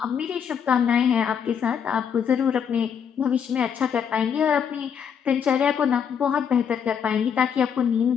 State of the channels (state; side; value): quieter; right; 7.6 dB